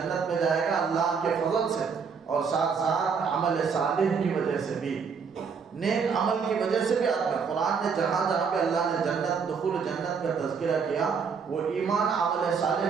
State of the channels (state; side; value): quieter; left; 5.9 dB